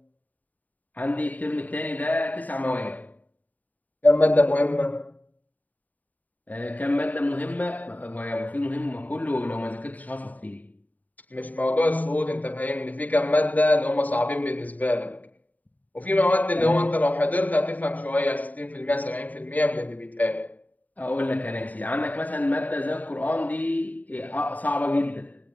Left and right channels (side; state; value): right; late; 0.076 ms